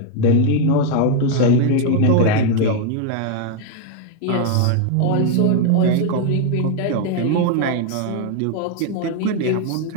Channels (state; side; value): different; both; correlation 0.01